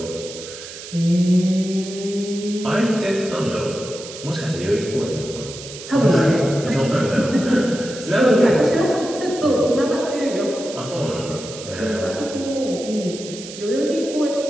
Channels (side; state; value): right; noise; hiss, 13 dB below the sound